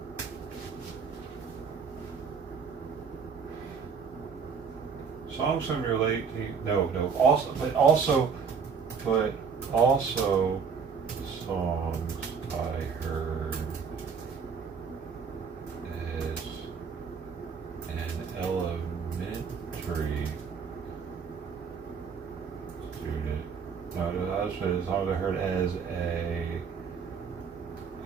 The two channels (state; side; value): quieter; left; 6.0 dB